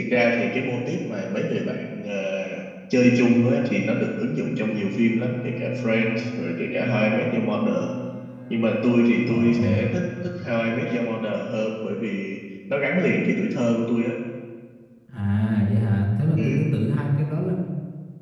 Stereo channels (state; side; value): identical; both; correlation 1.00